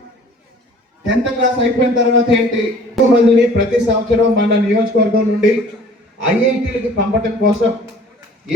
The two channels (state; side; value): normal; both; correlation 0.50